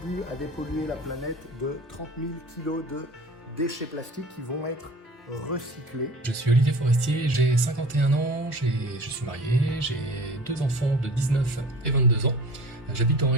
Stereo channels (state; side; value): normal; both; correlation 0.42